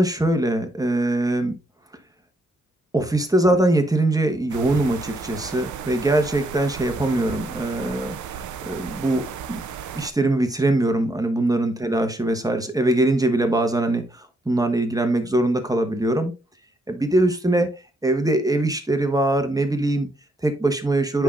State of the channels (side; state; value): both; normal; correlation 0.75